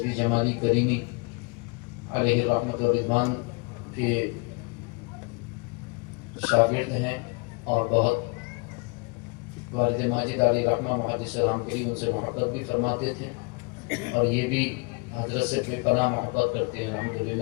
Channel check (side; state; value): right; quieter; 30.3 dB